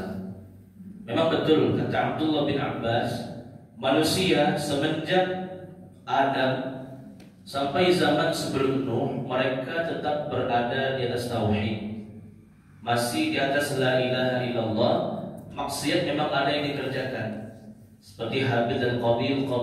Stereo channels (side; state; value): both; identical; correlation 1.00